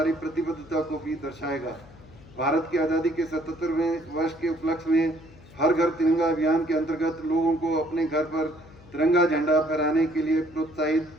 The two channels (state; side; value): noise; left; hum, 22 dB below the sound